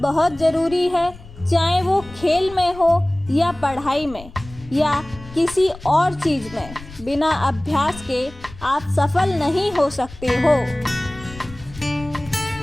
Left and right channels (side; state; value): left; noise; rumble, 18 dB below the sound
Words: बहुत ज़रूरी है, चाहे वो खेल में हो या पढ़ाई में या किसी और चीज़ में। बिना अभ्यास के आप सफल नहीं हो सकते हो।